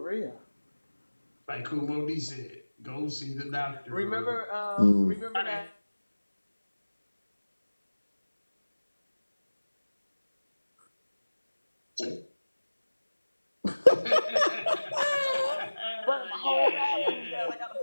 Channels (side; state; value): both; inverted; correlation -1.00